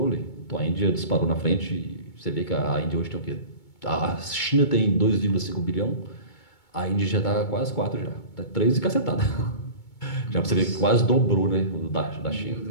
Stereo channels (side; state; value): right; late; 2.2 ms